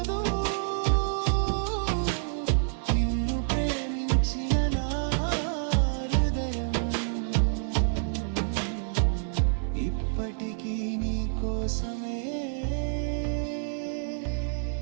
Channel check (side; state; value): left; silent; 59 dB below the other